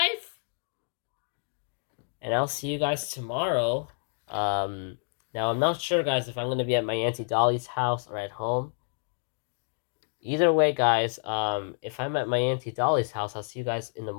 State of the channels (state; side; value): silent; right; digital silence